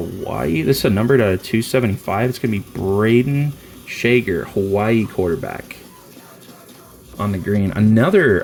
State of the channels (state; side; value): identical; both; correlation 1.00